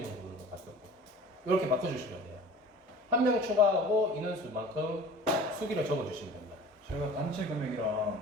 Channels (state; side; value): normal; both; correlation 0.42